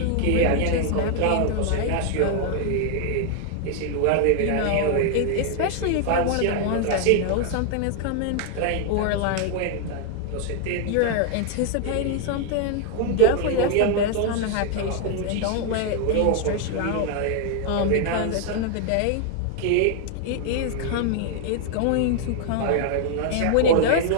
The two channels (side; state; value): both; different; correlation 0.00